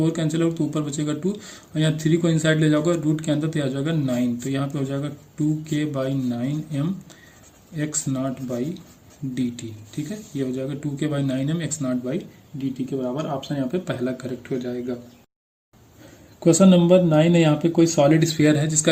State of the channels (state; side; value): identical; both; correlation 1.00